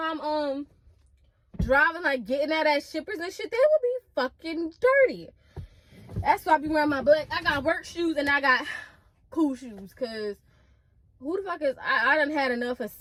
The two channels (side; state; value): both; identical; correlation 1.00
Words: I'm driving, like getting out at shippers and shit, they would be fucking dirty. That's why I be wearing my black. I got work shoes and I got cool shoes, cause who the fuck is I done had enough of